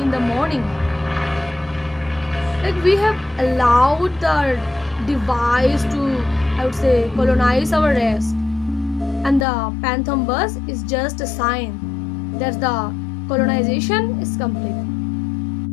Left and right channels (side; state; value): right; drops out; at 9.5 s